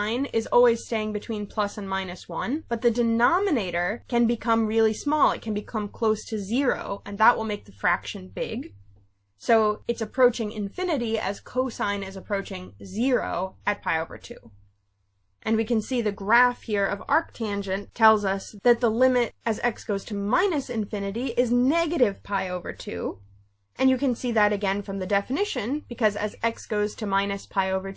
is always staying between plus and minus 1, but the denominator can become really small. It can become close to 0, and that will make the fraction big. So it's approaching infinity as cosine is approaching 0 at pi over 2. And we can see the graph here of arctangent tells us that the limit as x goes to minus infinity is negative pi over 2. And you can see that again from the definition, because as x goes to minus pi over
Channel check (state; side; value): identical; both; correlation 1.00